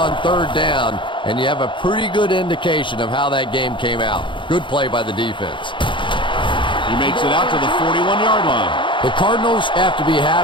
3rd down, and you have a pretty good indication of how that game came out. Good play by the defense. He makes it out to the 41-yard line. The Cardinals have to be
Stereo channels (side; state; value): right; late; 0.24 ms